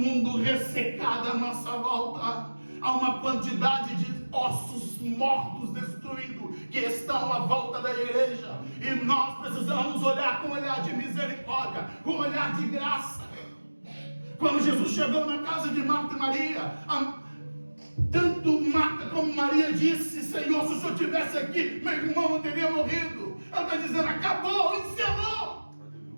ressecado à nossa volta. Há uma quantidade de ossos mortos, destruídos, que estão à volta da igreja. E nós precisamos olhar com um olhar de misericórdia, com um olhar de graça. Quando Jesus chegou na casa de Marta e Maria, tanto Marta como Maria disse: Senhor, se o Senhor estivesse aqui, meu irmão não teria morrido. Ela está dizendo: acabou, encerrou.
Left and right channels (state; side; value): inverted; both; correlation -1.00